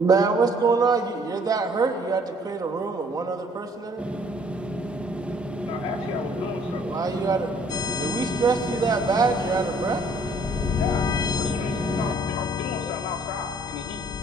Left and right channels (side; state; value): both; normal; correlation 0.60